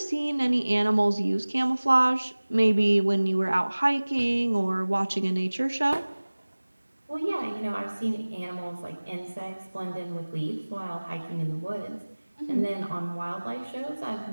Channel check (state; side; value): inverted; both; correlation -1.00